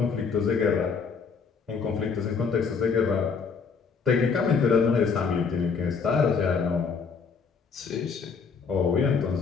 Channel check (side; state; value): right; quieter; 5.5 dB